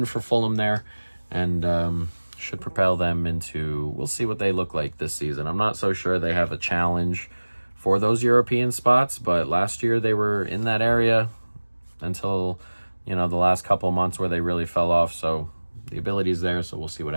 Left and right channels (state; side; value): inverted; both; correlation -1.00